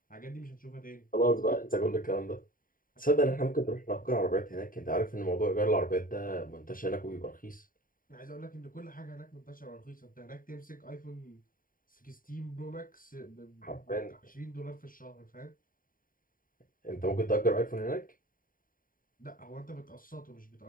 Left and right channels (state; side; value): late; right; 0.41 ms